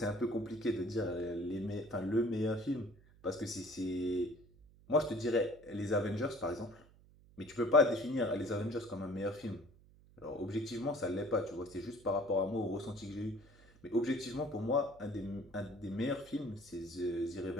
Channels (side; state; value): right; noise; hum, 25 dB below the sound